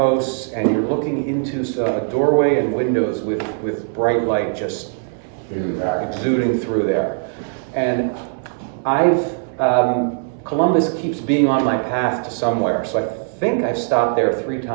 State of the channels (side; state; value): left; silent; digital silence